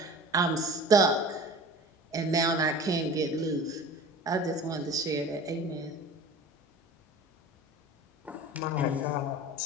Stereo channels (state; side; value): normal; both; correlation 0.40